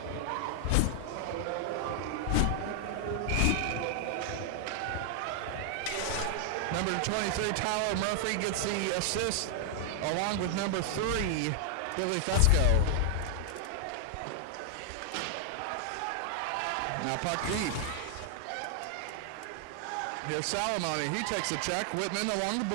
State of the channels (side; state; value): both; different; correlation 0.00